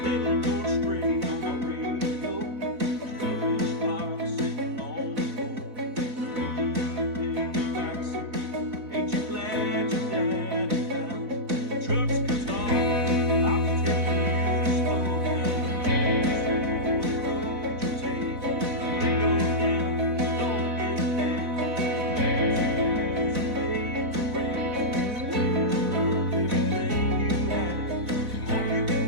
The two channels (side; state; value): left; late; 4.1 ms